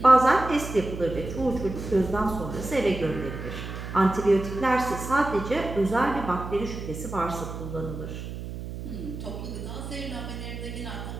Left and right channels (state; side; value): noise; right; hum, 8 dB below the sound